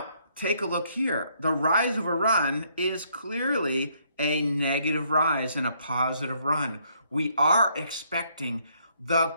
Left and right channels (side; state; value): both; inverted; correlation -0.70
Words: take a look here. The rise over run is clearly a negative rise and a positive run. We are expecting the